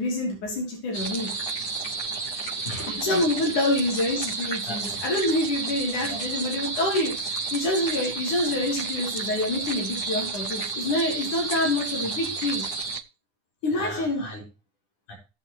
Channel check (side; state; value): right; late; 9.9 ms